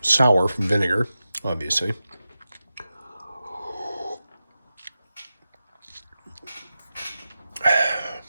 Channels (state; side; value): inverted; both; correlation -0.93